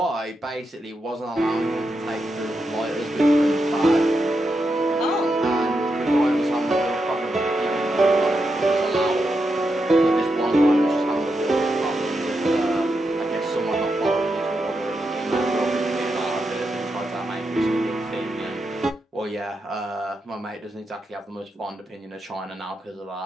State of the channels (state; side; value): normal; both; correlation 0.85